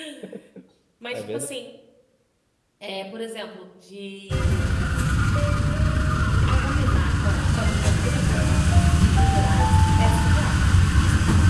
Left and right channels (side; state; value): both; identical; correlation 1.00